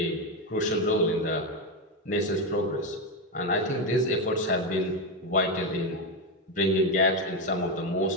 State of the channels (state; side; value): normal; both; correlation 0.10